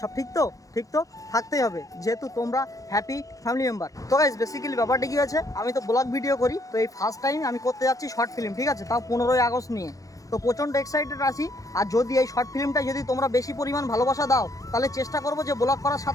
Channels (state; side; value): late; right; 0.17 ms